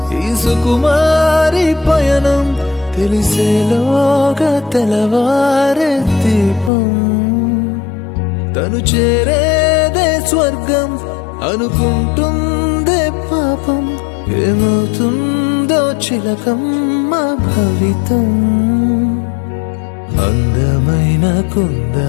ఈ సుకుమారి పయనం తెలిసేలోగా తెలవారే దీపం. తను చేరేదే స్వర్గం అనుకుంటుందే పాపం. ఏమవుతుందో చిలకమ్మ భవితం. అందమైన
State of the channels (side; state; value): right; drops out; at 6.7 s